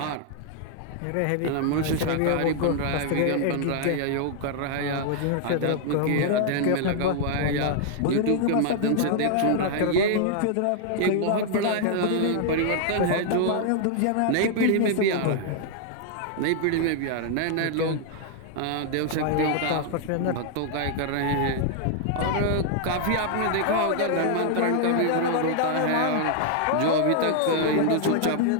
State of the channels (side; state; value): both; different; correlation 0.00